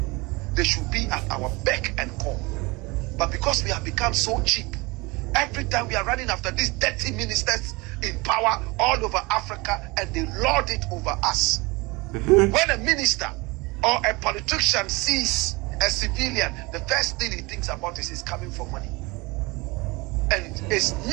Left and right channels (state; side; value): quieter; left; 24.8 dB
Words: They should be at our beck and call. But because we have become so cheap, every time we are running after these dirty ministers in power all over Africa, and they lord it over us. When a minister or a politician sees a civilian, the first thing he thinks about is he's coming for money. And it's